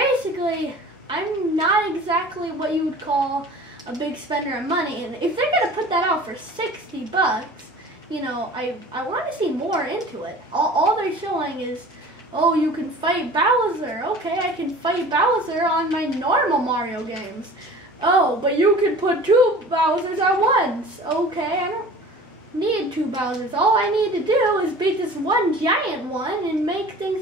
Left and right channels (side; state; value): both; normal; correlation 0.42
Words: I'm not exactly what you would call a big spender of money. And if they're going to put that out for $60, you know, I want to see more into it. All they're showing is, oh, you can fight Bowser. Okay, I can fight Bowser on my normal Mario games. Oh, but you can put 2 Bowsers at once. Okay, I don't need 2 Bowsers. All I need to do is beat this one giant one and make